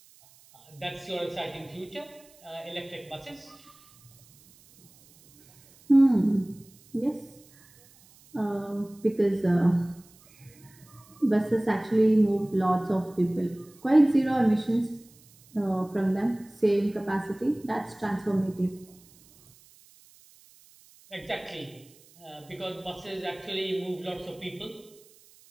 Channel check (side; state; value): right; noise; hiss, 27 dB below the sound